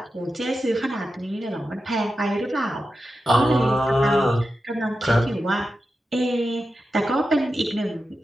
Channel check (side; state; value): both; normal; correlation 0.90